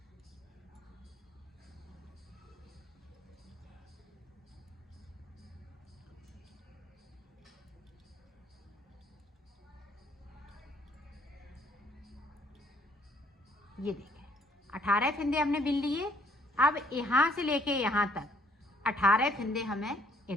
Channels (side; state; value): both; normal; correlation 0.64